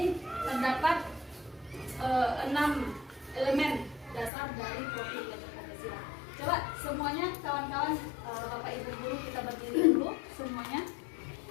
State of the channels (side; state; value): right; drops out; at 4.3 s